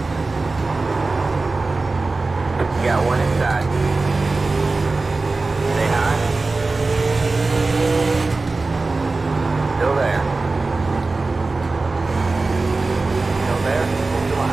You got one inside. Stay high. Still there. Still there. Hold the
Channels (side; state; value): left; quieter; 3.6 dB